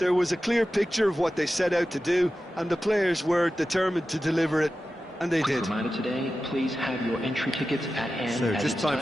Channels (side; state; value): both; normal; correlation 0.93